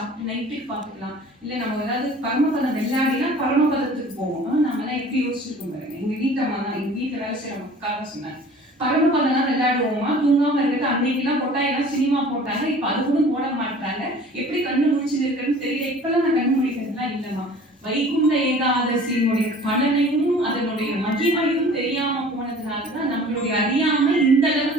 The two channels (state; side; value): normal; both; correlation 0.47